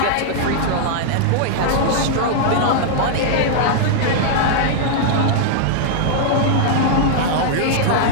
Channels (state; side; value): different; both; correlation -0.01